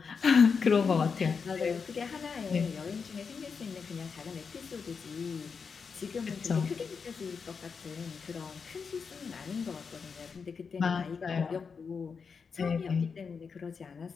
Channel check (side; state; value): right; quieter; 5.6 dB